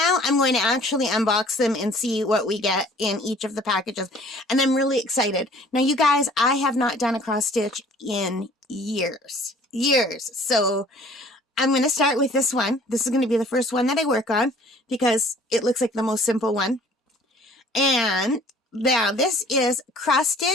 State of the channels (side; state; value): both; normal; correlation 0.53